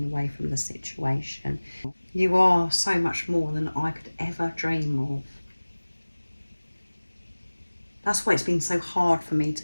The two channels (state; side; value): inverted; both; correlation -1.00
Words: away from the situation. You are so much more than I could ever dream of. That's why it's been so hard for me